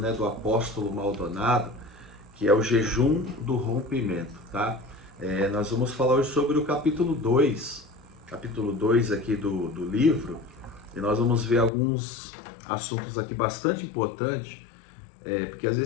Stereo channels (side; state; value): right; drops out; at 11.7 s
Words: do apóstolo Maldonado, que é o jejum do rompimento, tá? Nós vamos falar hoje sobre o capítulo 2 aqui do livro, e nós vamos ver alguns assuntos aqui bastante importantes, porque às